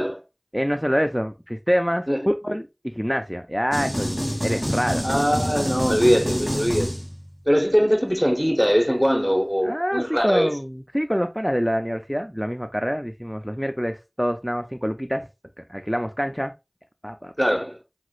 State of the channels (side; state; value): both; identical; correlation 1.00